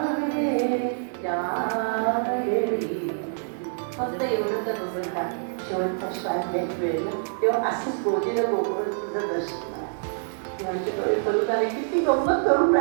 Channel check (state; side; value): silent; left; digital silence